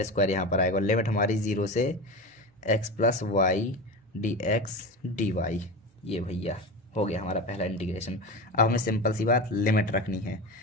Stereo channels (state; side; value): normal; both; correlation 0.25